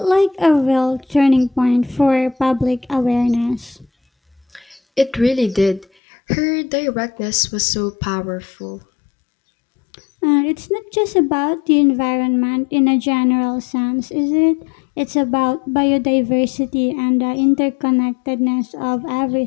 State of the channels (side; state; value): right; drops out; at 5.9 s